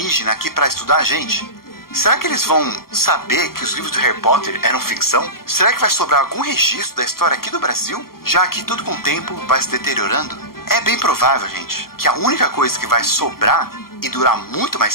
aqui para estudar a gente, será que eles vão saber que os livros do Harry Potter eram ficção? Será que vai sobrar algum registro da história aqui do Brasil? Já que tudo com o tempo vai se deteriorando? É bem provável, gente, que a única coisa que vai sobrar e durar muito mais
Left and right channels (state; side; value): late; right; 0.93 ms